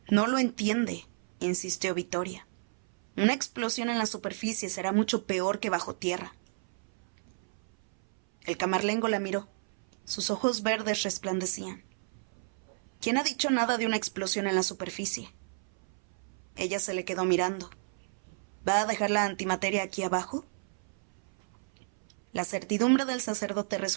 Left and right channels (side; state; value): left; silent; 57 dB below the other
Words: «No lo entiende», insistió Vittoria. «Una explosión en la superficie será mucho peor que bajo tierra». El Camarlengo la miró. Sus ojos verdes resplandecían. «¿Quién ha dicho nada de una explosión en la superficie?» Ella se le quedó mirando. «¿Va a dejar la antimateria aquí abajo?» La certidumbre del sacerdote